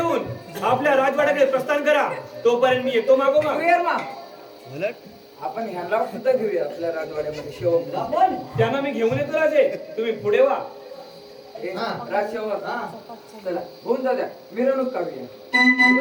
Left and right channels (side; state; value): both; identical; correlation 1.00